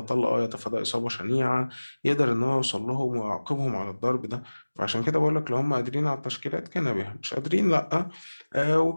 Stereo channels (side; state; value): both; inverted; correlation -1.00